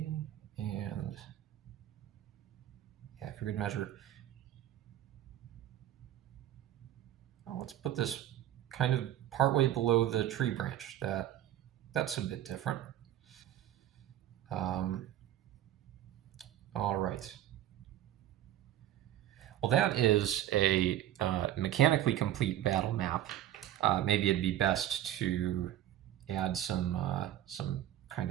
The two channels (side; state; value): left; quieter; 12.5 dB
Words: and yeah, for good measure, let's put this kind of partway below the tree branch. That's a bit different. All right. Well, that is a mechanically complete battle map. Maybe it'd be best to add some